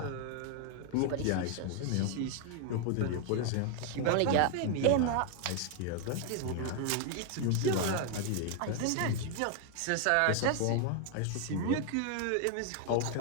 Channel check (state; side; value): different; both; correlation 0.00